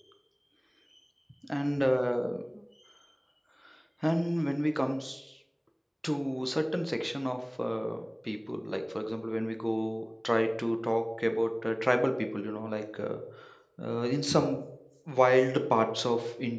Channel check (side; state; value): both; identical; correlation 1.00